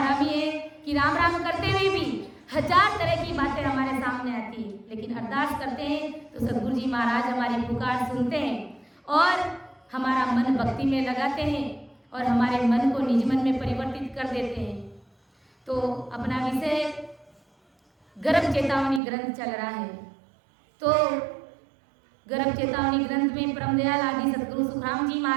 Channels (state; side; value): drops out; left; at 19.0 s